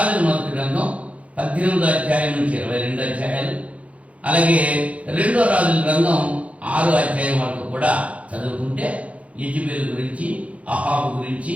మొదటి గ్రంథం 18వ అధ్యాయం నుంచి 22 అధ్యాయాలు, అలాగే 2వ రాజుల గ్రంథం 6వ అధ్యాయం వరకు కూడా చదువుకుంటే యెజబెలు గురించి, అహాబు గురించి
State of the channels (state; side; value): late; left; 0.065 ms